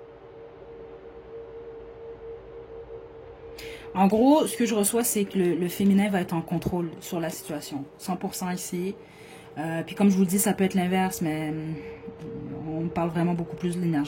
En gros, ce que je reçois, c'est que le féminin va être en contrôle sur la situation. 100% ici. Puis comme je vous le dis, ça peut être l'inverse, mais on parle vraiment beaucoup plus de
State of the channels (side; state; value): both; identical; correlation 1.00